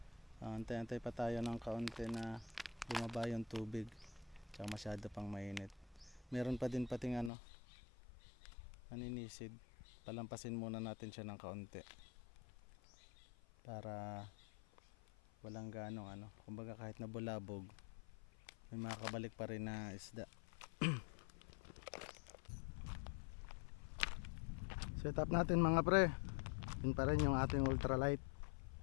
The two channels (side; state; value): right; drops out; at 7.3 s